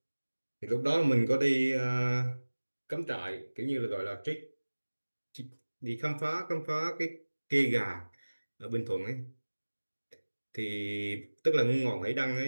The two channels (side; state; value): both; inverted; correlation -1.00